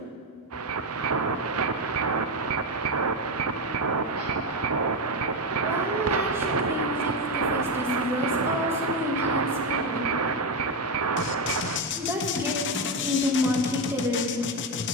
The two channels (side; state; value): both; normal; correlation 0.10